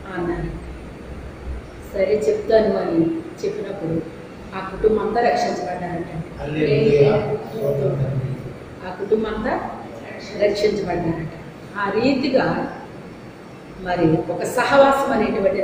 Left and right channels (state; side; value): identical; both; correlation 1.00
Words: అన్నాను. సరే చెప్తాను అని చెప్పినప్పుడు ఆ కుటుంబం అంతా రక్షించబడ్డారట. ఆ కుటుంబం అంతా రక్షించబడ్డారట. ఆ రీతిగా మరి ఒక సహవాసం